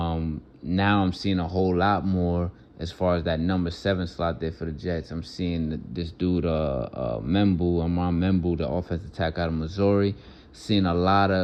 I'm seeing a whole lot more as far as that number 7 slot there for the Jets. I'm seeing this dude, Amon Membu, the offensive tackle out of Missouri. Seeing a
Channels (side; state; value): both; identical; correlation 1.00